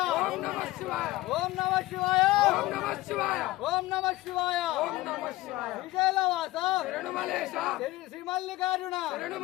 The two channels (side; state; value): right; quieter; 18.3 dB